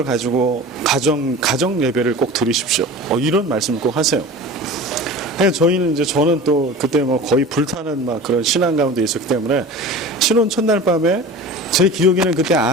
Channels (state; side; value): normal; both; correlation 0.36